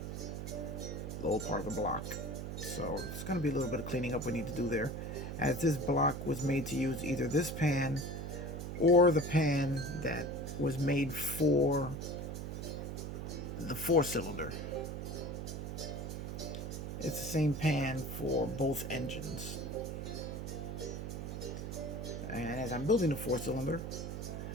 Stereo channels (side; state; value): right; noise; hum, 5 dB below the sound